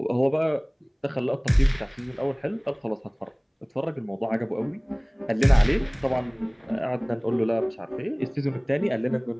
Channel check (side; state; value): both; identical; correlation 1.00